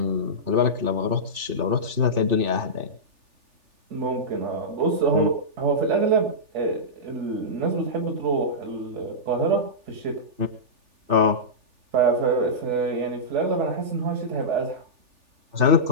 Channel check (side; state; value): left; late; 3.4 ms